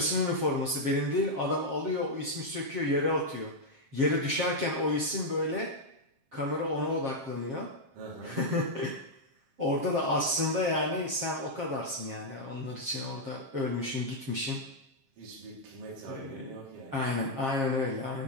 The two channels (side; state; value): left; late; 7.5 ms